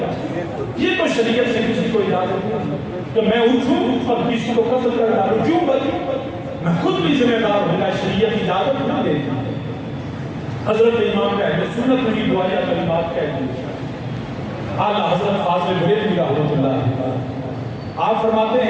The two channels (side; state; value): both; identical; correlation 1.00